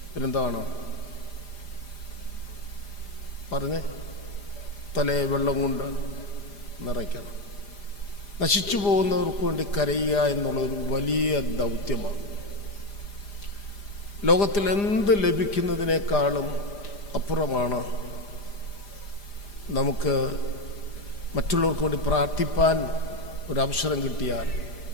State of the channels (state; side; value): late; right; 4.9 ms